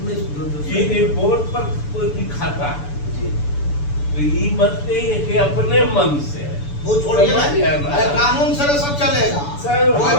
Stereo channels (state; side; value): late; right; 6.9 ms